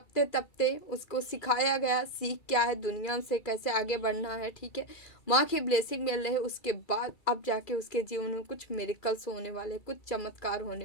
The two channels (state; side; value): late; right; 2.4 ms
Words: तपते उसको सिखाया गया, सीख क्या है, दुनिया से कैसे आगे बढ़ना है, ठीक है। माँ की ब्लेसिंग मिल रही है, उसके बाद अब जाके उसके जीवन में कुछ मिरेकल्स होने वाले, कुछ चमत्कार